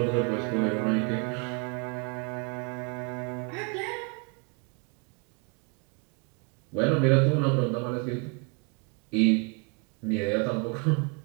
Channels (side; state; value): left; quieter; 34.2 dB